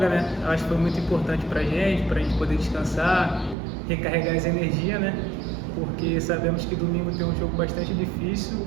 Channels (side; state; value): left; drops out; at 3.6 s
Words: né? Eu acho que foi muito importante pra gente poder descansar, recarregar as energias, né? Porque sabemos que domingo tem um jogo bastante difícil